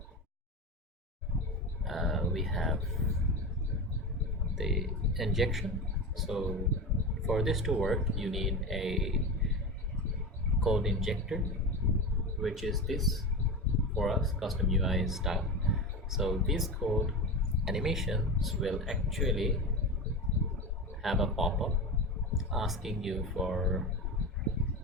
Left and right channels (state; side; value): normal; both; correlation 0.24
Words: we have the injection. So for this to work, you need a code injector, which is this for us, custom UI style. So these code animations will actually have a pop-up asking you for